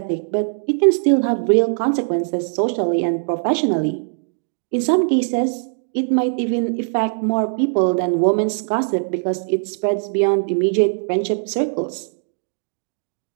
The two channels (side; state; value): left; silent; digital silence